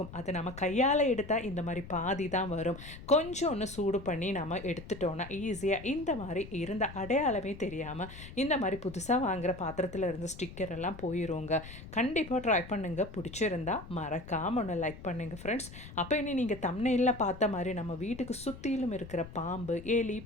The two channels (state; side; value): noise; left; rumble, 14 dB below the sound